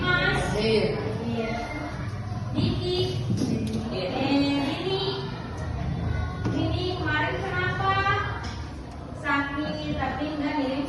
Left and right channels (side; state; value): both; identical; correlation 1.00